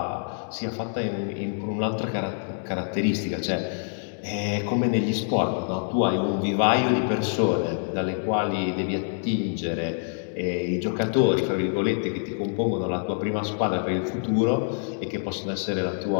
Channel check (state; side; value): silent; right; digital silence